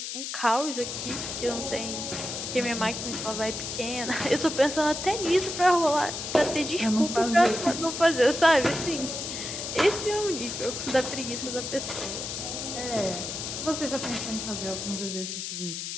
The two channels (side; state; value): left; noise; hiss, 5 dB below the sound